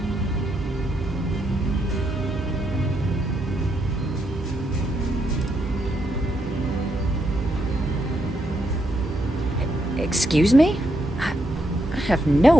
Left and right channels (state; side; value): normal; both; correlation 0.78